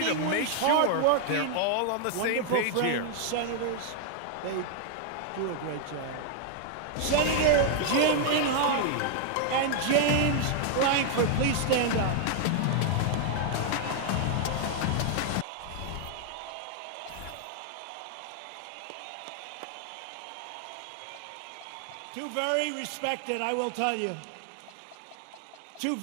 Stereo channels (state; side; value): different; both; correlation 0.00